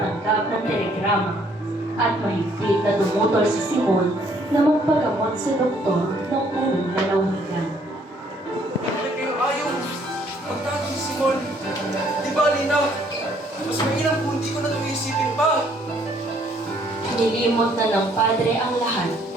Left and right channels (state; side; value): normal; both; correlation 0.64